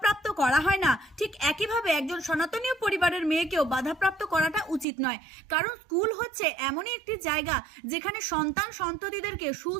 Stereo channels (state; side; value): drops out; left; at 4.9 s